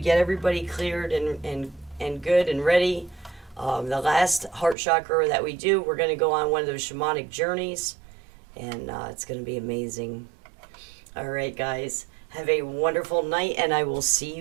everybody cleared and good and ready. The last heart chakra that we do, we're going to go on one of those shamanic journeys, and it's going to be amazing. All right, guys. Have a wonderful night, and I will see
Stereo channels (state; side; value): drops out; left; at 4.8 s